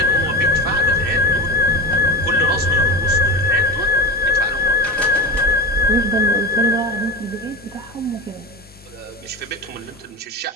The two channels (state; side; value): normal; both; correlation 0.28